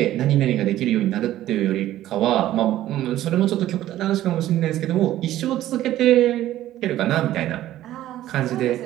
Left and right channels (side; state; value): left; quieter; 13.8 dB